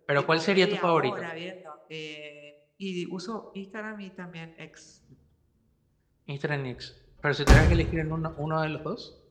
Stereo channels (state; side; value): identical; both; correlation 1.00